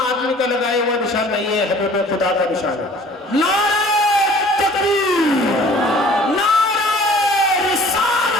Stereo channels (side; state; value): both; normal; correlation 0.50